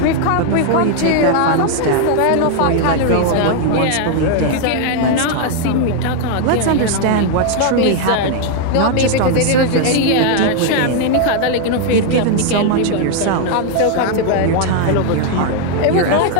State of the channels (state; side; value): different; both; correlation 0.00